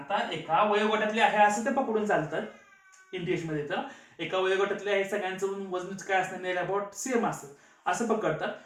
एका वयोगटातले आहे असं ते पकडून चालतात इंटिग्रेशन मध्ये. तर एका वयोगटातले आहे सगळ्यांचं वजन काय असणार, अबाउट सेम असतं असं पकडतात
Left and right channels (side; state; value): both; identical; correlation 1.00